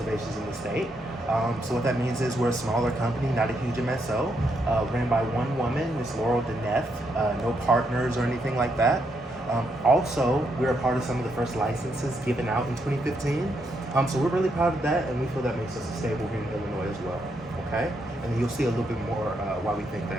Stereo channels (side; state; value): both; normal; correlation 0.78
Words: in the state. So what that means is we're a smaller company, not a huge MSO, ran by one woman, Miss Laurel Deneth, no partners or anything like that. Also, we're a part of some of the first licenses given out in 2015. So we're really proud of that, and we feel that makes us stable here in Illinois as well. Okay, and you'll see a little bit more why we think